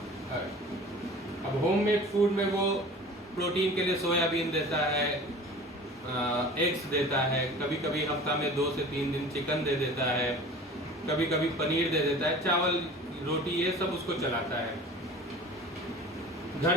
अब होममेड फूड में वो प्रोटीन के लिए सोयाबीन देता है, एग्स देता है, कभी कभी हफ्ता में 2 से 3 दिन चिकन दे देता है, कभी कभी पनीर दे देता है, चावल रोटी ये सब उसको चलाता है। घर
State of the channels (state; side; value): normal; both; correlation 0.41